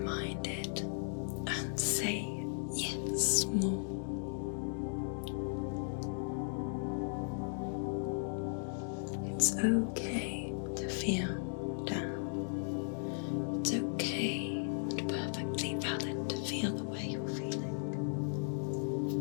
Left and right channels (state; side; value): silent; right; digital silence